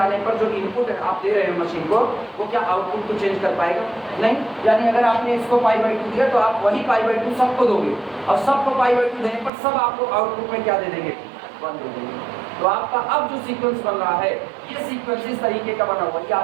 पर जो इनपुट है आप दे रहे हो मशीन को, वो क्या आउटपुट को चेंज कर पाएगा? नहीं। यानी अगर आपने इसको पाई बाई 2 दिया तो आप वही पाई बाई 2 सबको दोगे, और सबको पाई बाई 2 देने पर सब आपको आउटपुट में क्या दे देंगे? 1 दे देंगे। तो आपका अब जो सीक्वेंस बन रहा है, ये सीक्वेंस इस तरीके का बना हुआ, ये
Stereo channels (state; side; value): drops out; left; at 9.5 s